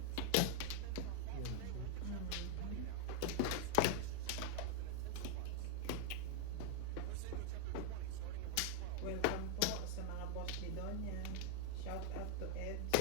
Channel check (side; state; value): both; different; correlation 0.00